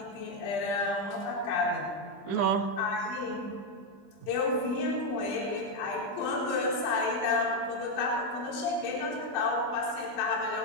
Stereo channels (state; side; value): late; right; 20 ms